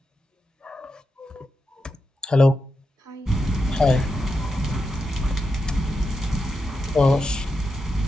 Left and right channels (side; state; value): both; normal; correlation 0.87